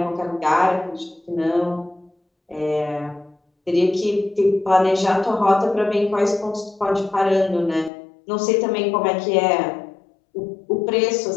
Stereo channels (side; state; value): right; drops out; at 7.9 s